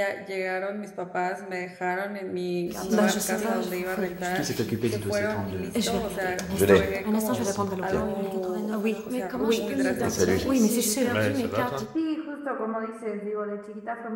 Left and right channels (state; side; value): identical; both; correlation 1.00